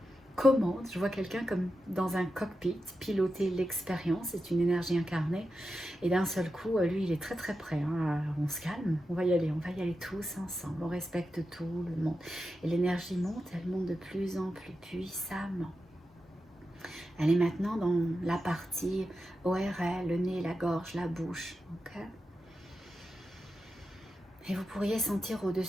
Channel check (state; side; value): normal; both; correlation 0.90